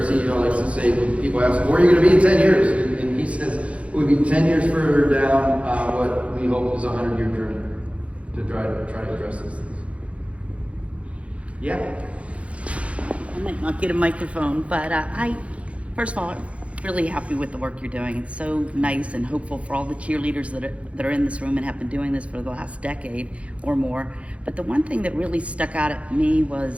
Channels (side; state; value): left; late; 0.063 ms